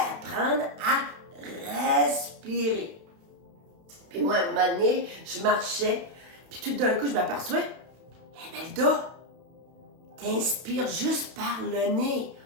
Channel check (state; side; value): late; left; 31 ms